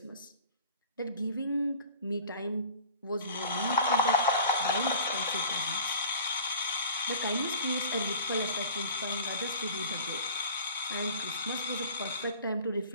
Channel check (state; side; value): inverted; both; correlation -0.42